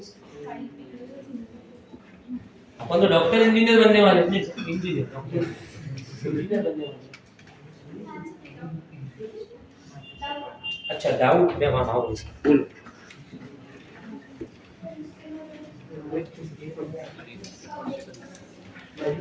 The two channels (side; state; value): both; identical; correlation 1.00